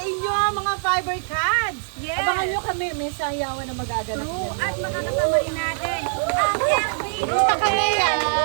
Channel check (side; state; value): left; silent; digital silence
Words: inyo mga Fiber Cats. Yes. Abangan nyo kami, may sayawan na magaganap. True. At makakasama rin natin ang FB Gusto kami yan.